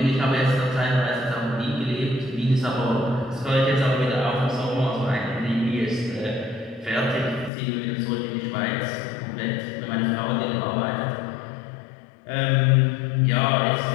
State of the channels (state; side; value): drops out; right; at 7.5 s